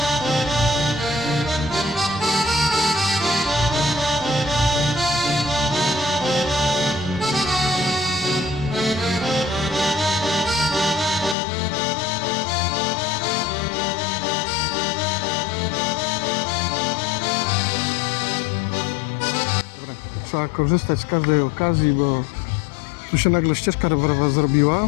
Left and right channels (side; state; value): right; drops out; at 11.4 s